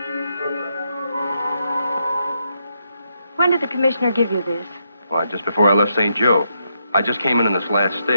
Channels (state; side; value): inverted; both; correlation -0.80